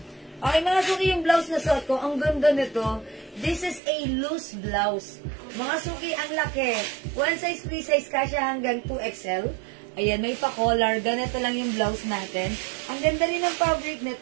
Okay, mga suki yung blouse na suot ko, ang ganda nito. This is a loose blouse. Mga suki, ang laki. One size, free size, kasya hanggang 2XL. Ayan, may pa-collar. Ganito lang yung blouse natin. Ang ganda rin ng fabric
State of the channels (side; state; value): left; drops out; at 3.8 s